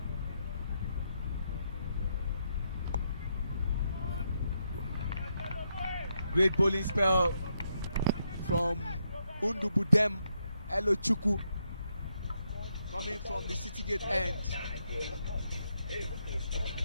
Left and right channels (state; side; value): inverted; both; correlation -0.80